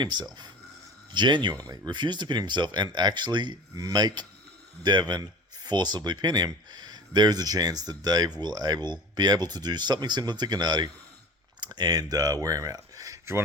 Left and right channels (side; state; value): both; normal; correlation 0.38